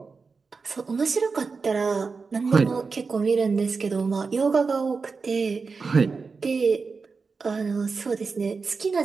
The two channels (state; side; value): quieter; left; 4.7 dB